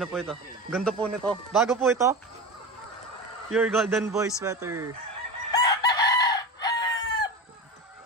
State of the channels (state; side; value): normal; both; correlation 0.25